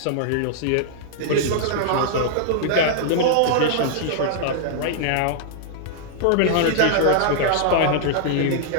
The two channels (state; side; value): different; both; correlation -0.01